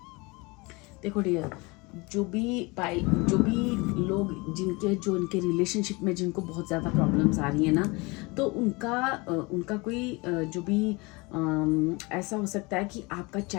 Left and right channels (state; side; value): quieter; right; 25.9 dB